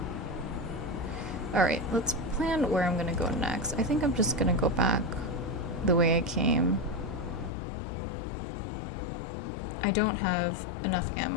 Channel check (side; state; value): right; drops out; at 7.5 s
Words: Alright, let's plan where I'm gonna go next. I think I'm just gonna go back the way I came. I don't have enough